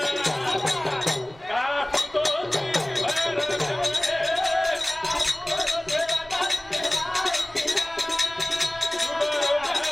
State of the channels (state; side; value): noise; right; rumble, 24 dB below the sound